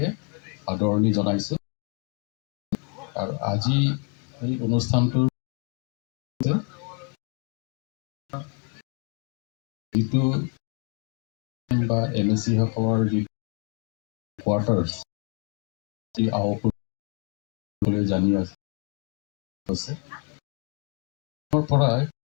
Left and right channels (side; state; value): right; quieter; 33.7 dB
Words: আদৰণি জনাইছোঁ। আৰু আজি এই অনুষ্ঠানটোৰ যিটো বা MSC সকলৰ যি কোৱাৰ্টাৰ্ছ জানি আছে পৰাই